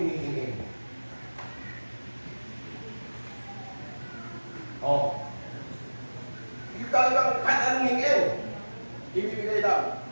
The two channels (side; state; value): both; inverted; correlation -1.00